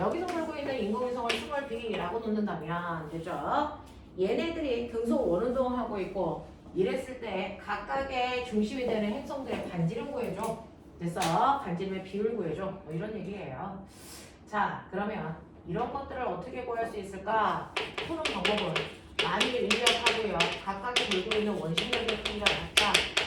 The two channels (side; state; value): both; identical; correlation 1.00